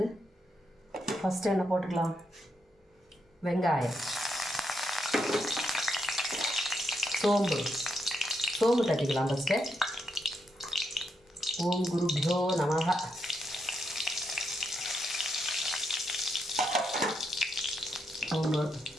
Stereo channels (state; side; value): normal; both; correlation 0.81